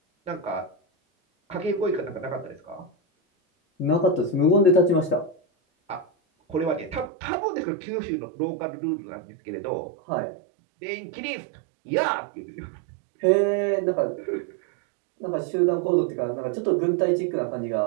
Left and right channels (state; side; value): drops out; left; at 7.1 s